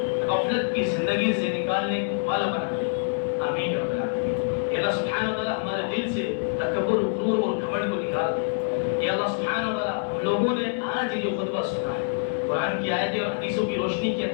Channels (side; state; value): right; silent; 61 dB below the other